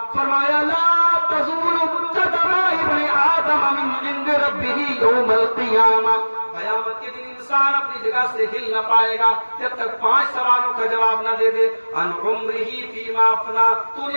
فرمایا لا تزول قدم ابن آدم من عند ربہ یوم القیامہ. قیامت کے دن انسان اپنی جگہ سے ہل نہ پائے گا جب تک 5 سوالوں کا جواب نہ دے دے. ان عمرہ فیما افنا، تو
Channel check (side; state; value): both; inverted; correlation -1.00